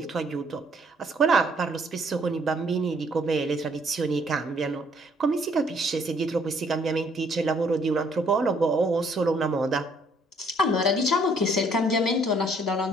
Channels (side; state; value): both; normal; correlation 0.64